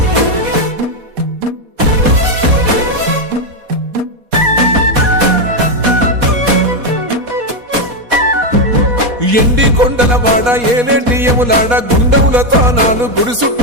ఎండి కొండల వాడ, ఏలేటి యములాడ, గుండముల తానాలు, గుడి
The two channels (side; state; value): left; late; 4.2 ms